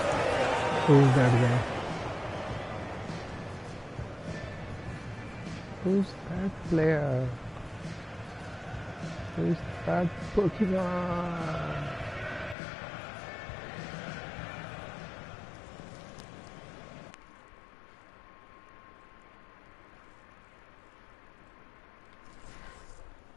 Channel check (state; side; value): drops out; right; at 12.6 s